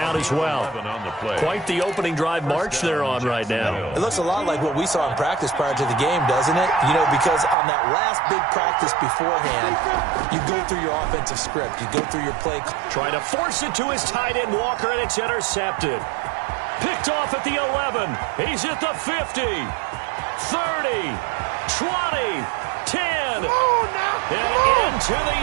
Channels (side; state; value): left; drops out; at 7.6 s